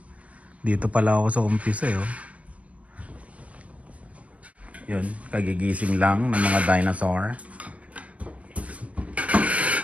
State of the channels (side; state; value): left; late; 0.065 ms